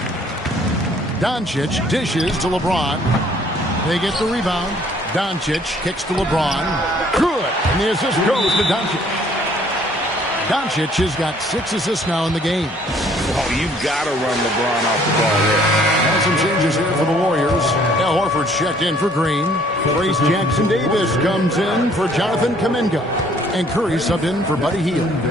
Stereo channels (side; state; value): both; normal; correlation 0.60